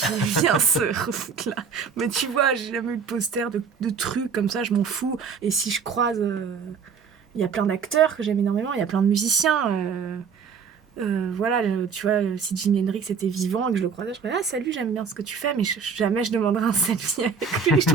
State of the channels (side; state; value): left; quieter; 6.0 dB